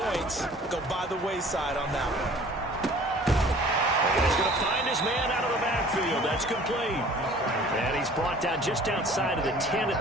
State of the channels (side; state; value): both; normal; correlation 0.49